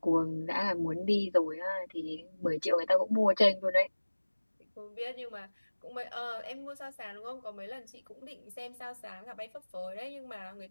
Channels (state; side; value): inverted; both; correlation -1.00